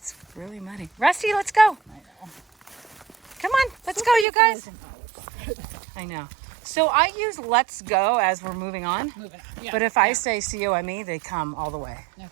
really muddy. Rusty, let's go. I know. Come on, let's go, you guys. I know. So I use let's go as we're moving on. Yeah, but if I say COME, they come all the way. Okay.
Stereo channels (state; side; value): drops out; left; at 4.2 s